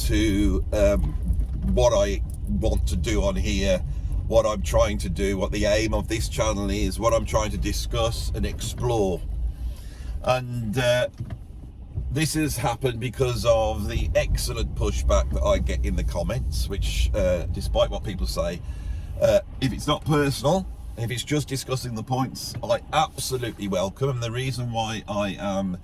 what I want to do on here, what I'm trying to do, what the aim of this channel is, what I'm trying to discuss and explore. And this has happened because of the excellent pushback that I get in the comments, which despite what people say, if it's not personal, if it's just discussing the points, I absolutely welcome. And the reason why I am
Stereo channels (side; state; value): both; identical; correlation 1.00